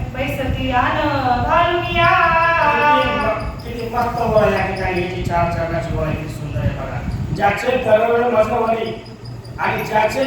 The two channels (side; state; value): both; identical; correlation 1.00